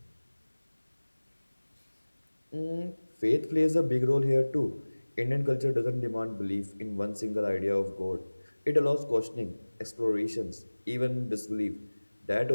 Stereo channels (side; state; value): both; inverted; correlation -1.00